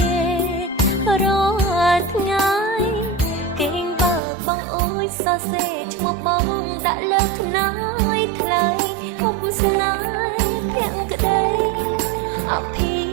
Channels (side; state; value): left; drops out; at 4.2 s